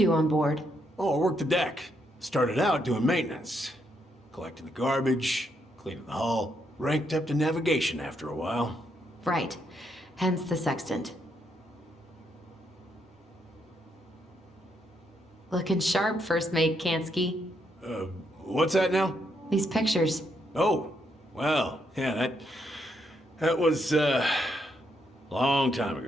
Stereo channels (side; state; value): both; normal; correlation 0.77